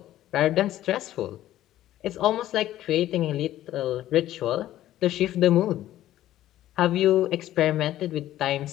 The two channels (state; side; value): quieter; right; 13.6 dB